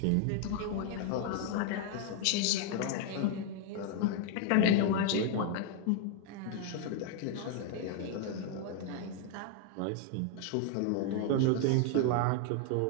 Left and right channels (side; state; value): both; different; correlation 0.00